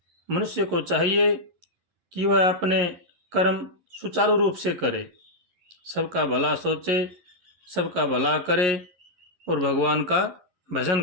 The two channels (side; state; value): left; late; 11 ms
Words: मनुष्य को चाहिए कि वह अपने कर्म सुचारू रूप से करे, सबका भला सोचे, सबका भला करे और भगवान का